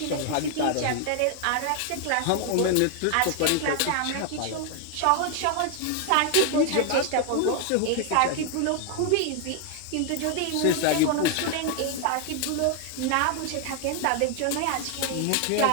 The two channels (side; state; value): both; different; correlation 0.00